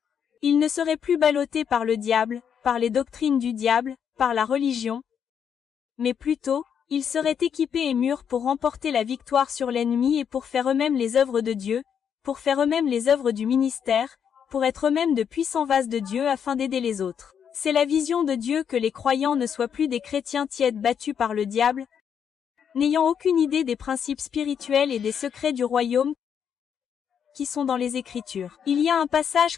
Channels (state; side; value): quieter; right; 7.9 dB